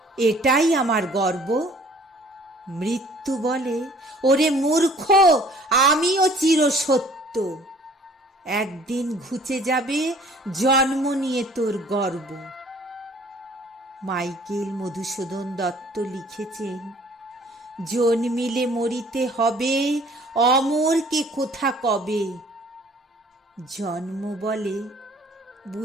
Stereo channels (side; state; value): both; normal; correlation 0.54